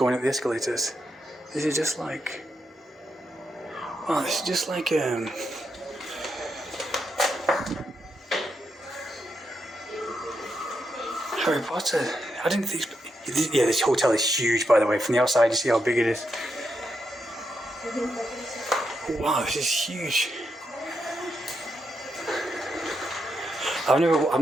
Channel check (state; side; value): normal; both; correlation 0.83